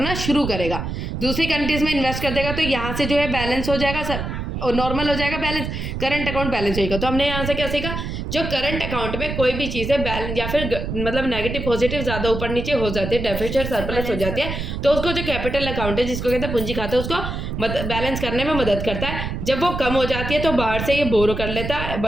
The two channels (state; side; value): noise; right; rumble, 5 dB below the sound